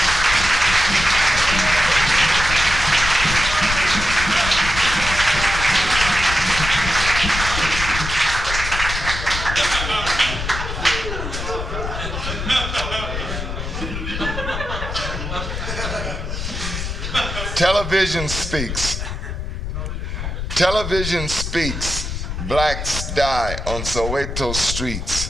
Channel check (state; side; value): noise; left; rumble, 5 dB below the sound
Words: Television speaks. Television speaks. Blacks die on Soweto